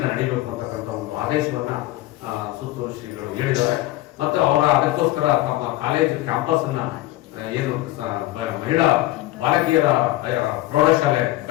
ನಡೀಬೇಕು ಅಂತಕ್ಕಂಥ ಒಂದು ಆದೇಶವನ್ನ ಸುತ್ತೂರು ಶ್ರೀಗಳು ಹೇಳಿದ್ದಾರೆ. ಮತ್ತೆ ಅವರ ಅದಕ್ಕೋಸ್ಕರ ತಮ್ಮ ಕಾಲೇಜು ಕ್ಯಾಂಪಸ್ ಅನ್ನ ಏನು ಮಹಿಳಾ ಬಾಲಕಿಯರ ಪ್ರೌಢಶಾಲೆ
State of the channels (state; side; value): quieter; right; 16.9 dB